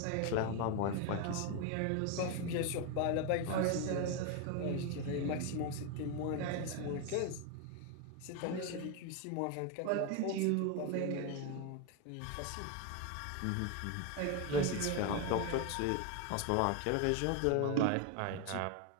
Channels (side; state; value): both; different; correlation 0.02